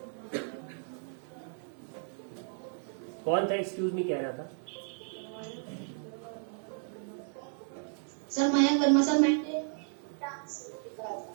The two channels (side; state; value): left; silent; 55 dB below the other